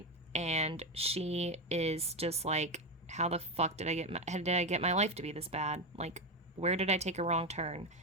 and she is just like, how the fuck did I get my life to be this bad? Like, where did I take a wrong turn?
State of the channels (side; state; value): both; normal; correlation 0.13